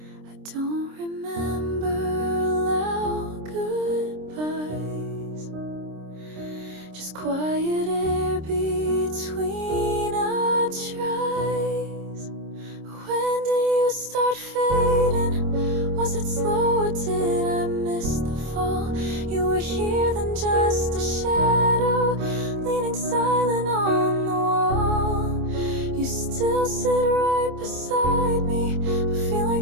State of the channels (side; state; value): left; late; 26 ms